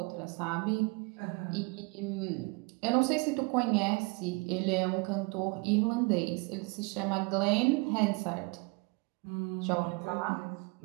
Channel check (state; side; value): quieter; left; 29.3 dB